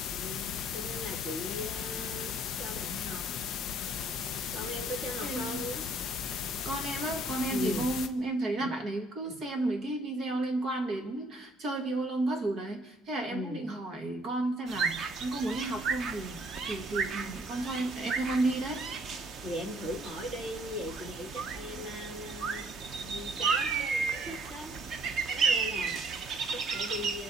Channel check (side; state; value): both; normal; correlation 0.62